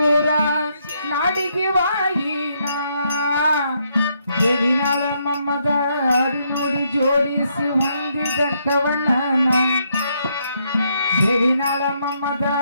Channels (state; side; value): inverted; both; correlation -0.75